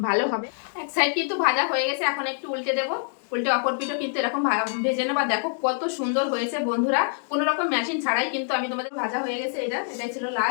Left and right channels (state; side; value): silent; right; digital silence